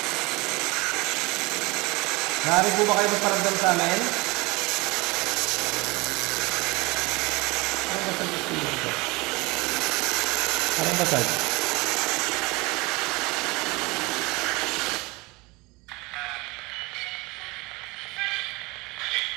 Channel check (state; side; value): quieter; left; 24.4 dB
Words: Nari po ba kayo magparamdam sa amin? Anong basag ito? Anong basag?